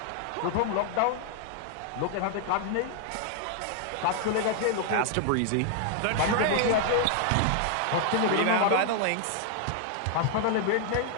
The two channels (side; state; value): both; different; correlation 0.00